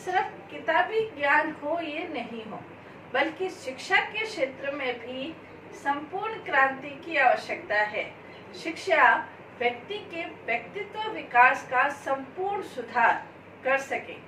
किताबी ज्ञान हो ये नहीं हो, बल्कि शिक्षा के क्षेत्र में भी संपूर्ण क्रांति की आवश्यकता है। शिक्षा व्यक्ति के व्यक्तित्व विकास का संपूर्ण सुधार कर सके।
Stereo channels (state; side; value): identical; both; correlation 1.00